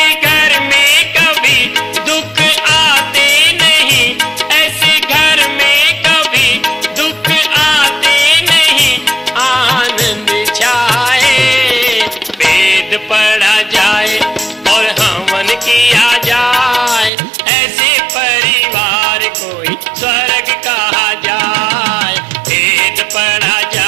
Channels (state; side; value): drops out; left; at 17.1 s